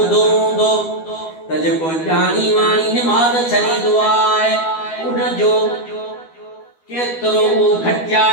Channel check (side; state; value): right; late; 12 ms